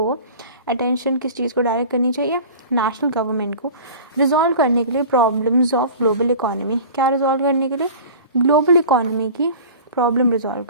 अटेंशन किस चीज़ को डायरेक्ट करनी चाहिए? नेशनल गवर्नमेंट को, रिजॉल्व करने के लिए प्रॉब्लम्स ऑफ ग्लोबल इकोनॉमी। क्या रिजॉल्व करने के लिए? ग्लोबल इकोनॉमी की प्रॉब्लम रिजॉल्व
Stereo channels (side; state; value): both; inverted; correlation -0.40